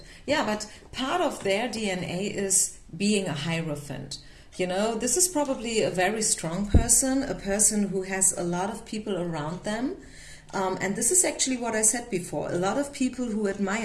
Yeah, but part of their DNA is being a Hierophant. You know, this is probably a very strong person, a person who has a lot of people around them. And this is actually what I said before. A lot of people who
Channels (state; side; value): identical; both; correlation 1.00